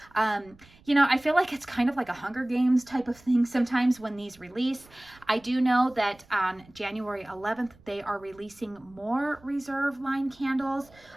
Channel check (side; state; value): right; noise; rumble, 27 dB below the sound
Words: You know, I feel like it's kind of like a Hunger Games type of thing sometimes when these release. I do know that on January 11th, they are releasing more reserve line candles.